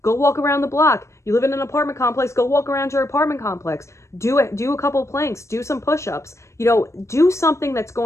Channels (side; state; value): right; late; 0.14 ms